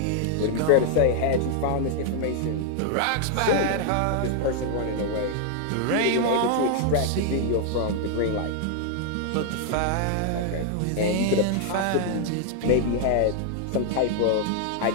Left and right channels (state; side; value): different; both; correlation 0.00